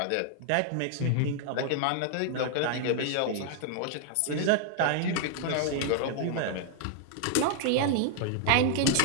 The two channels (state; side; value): different; both; correlation 0.00